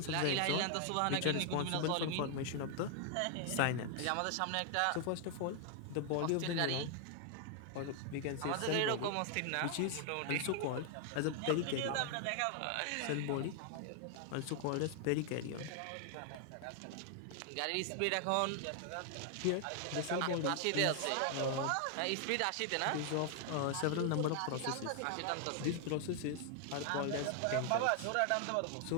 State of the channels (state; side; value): different; both; correlation 0.00